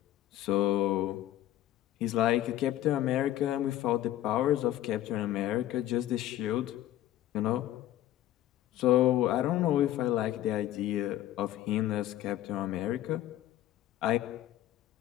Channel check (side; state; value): right; quieter; 13.6 dB